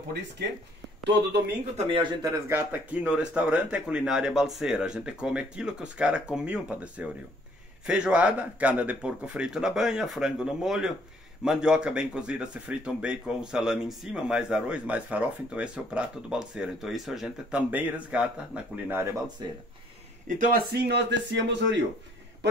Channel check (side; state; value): both; normal; correlation 0.62